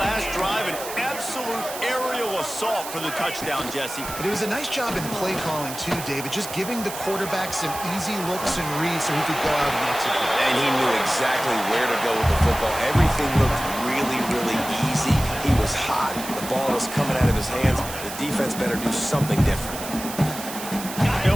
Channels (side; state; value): right; noise; hiss, 10 dB below the sound